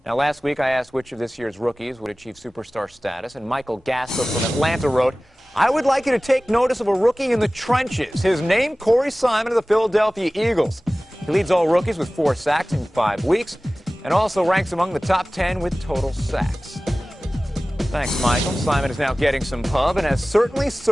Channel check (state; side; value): normal; both; correlation 0.97